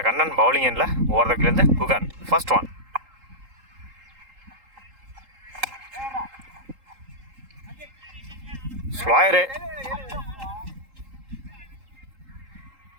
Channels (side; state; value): left; late; 3.8 ms